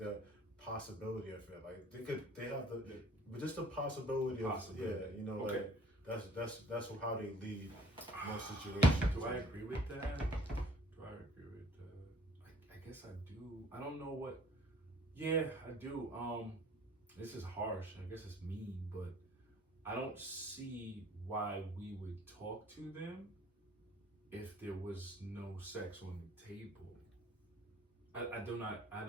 possibility of it. Like they have the, but just the possibility of, Possibility. yeah, you know, Okay. like that's how they lead most situations. Do I agree with that? Do I agree with that? I guess I do. I don't know what. Yeah, I do. This is harsh. I guess it's mean, but I don't see why we would talk to them if there was no sex on the table. I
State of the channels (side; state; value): both; normal; correlation 0.54